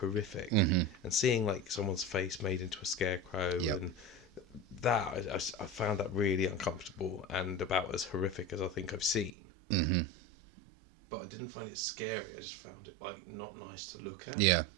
Mm-hmm. And seeing like someone's face made into a scarecrow, and that, I found that really uncomfortable and about as horrific as I think I've seen. Mm-hmm. But I didn't find it scary. I just found it like not nice to look at. Yeah.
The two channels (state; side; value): drops out; left; at 9.3 s